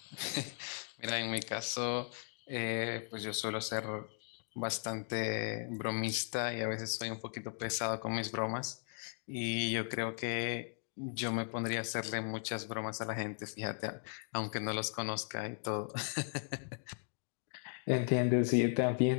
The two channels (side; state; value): right; silent; 53 dB below the other